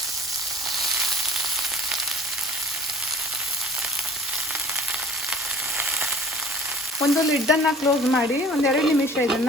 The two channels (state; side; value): normal; both; correlation 0.48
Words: ಒಂದು ಲಿಡ್ಡನ್ನು ಕ್ಲೋಸ್ ಮಾಡಿ 1-2 ನಿಮಿಷ